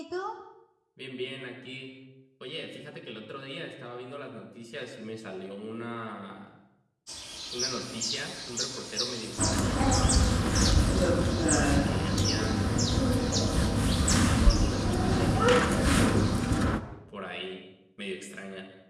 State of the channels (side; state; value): both; identical; correlation 1.00